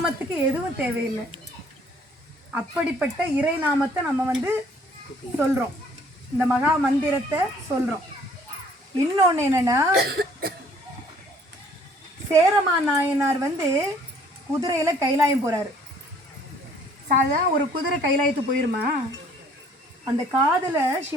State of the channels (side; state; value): both; normal; correlation 0.59